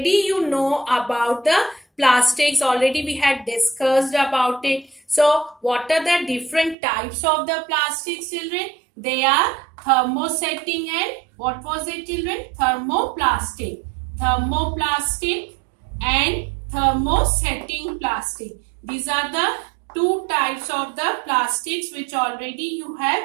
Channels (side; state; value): left; drops out; at 6.8 s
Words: you know about the plastics, already we had discussed about it. So what are the different types of the plastics, children? They are thermosetting and what was it, children? Thermoplastic. Thermoplastic and thermosetting plastic. These are the two types of the plastics which already you